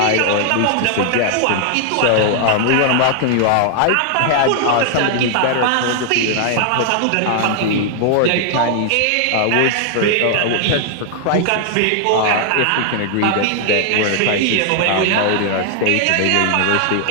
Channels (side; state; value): both; different; correlation 0.00